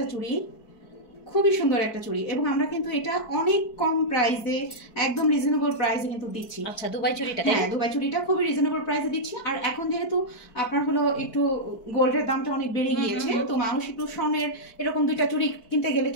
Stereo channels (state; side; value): late; right; 4.5 ms